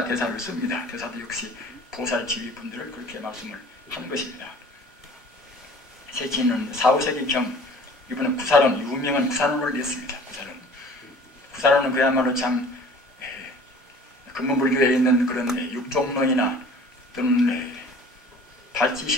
대사를 씁니다. 대사도 역시 보살 지휘분들을 그렇게 말씀을 하는 것입니다. 세친은 4, 5세기경 이번에 구사론, 유명한 구사론을 냈습니다. 구사론은 그야말로 참 근본불교에 있는 그런 육종론이나 또는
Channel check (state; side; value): normal; both; correlation 0.47